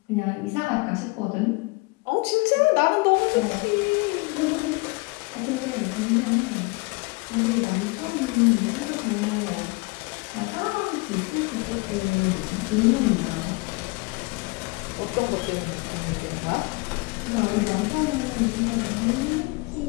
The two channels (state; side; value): quieter; right; 27.0 dB